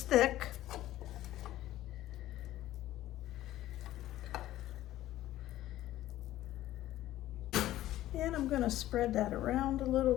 thick. And I'm going to spread that around a little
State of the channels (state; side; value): quieter; right; 14.4 dB